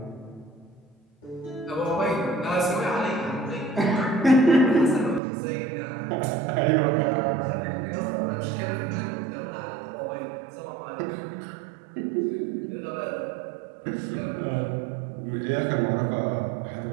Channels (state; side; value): drops out; left; at 5.2 s